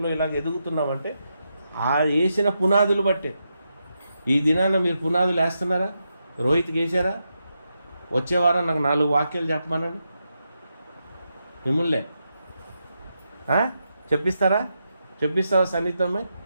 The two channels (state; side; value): inverted; both; correlation -0.85